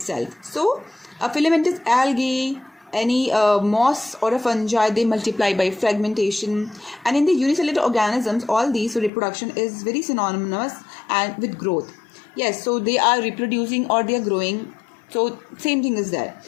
So a filamentous algae, any moss or a fungi, they multiply by fragmentation. And in the unicellular organisms, all these, so reproduction is very synonymous and with growth. Yes, so they are reproducing or they are growing, so same thing is there.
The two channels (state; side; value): drops out; right; at 9.1 s